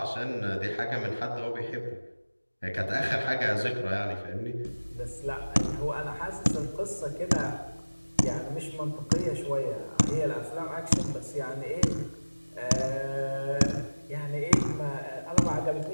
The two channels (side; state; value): both; inverted; correlation -1.00